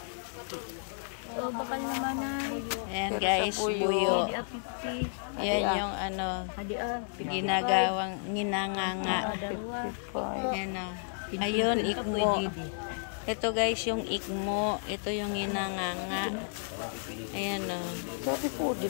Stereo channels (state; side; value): silent; right; digital silence